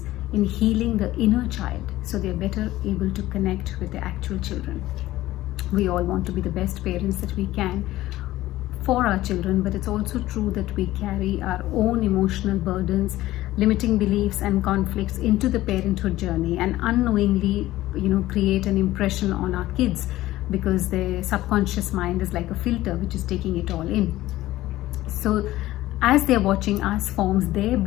in healing the inner child so they're better able to connect with their actual children. We all want to be the best parents that we can for our children, but it's also true that we carry our own emotional burdens, limiting beliefs and conflicts into the parenthood journey, and unknowingly create an impression on our kids because their subconscious mind is like a filter which is taking it all in. So as they're watching us forms their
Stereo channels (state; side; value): quieter; right; 16.1 dB